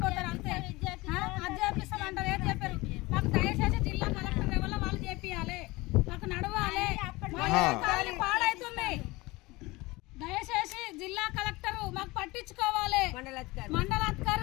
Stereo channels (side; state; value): right; quieter; 21.8 dB